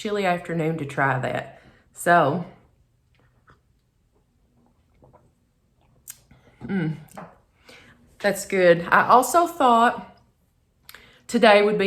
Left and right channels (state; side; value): identical; both; correlation 1.00